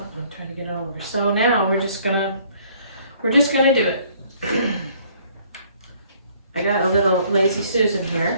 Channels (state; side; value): inverted; both; correlation -0.60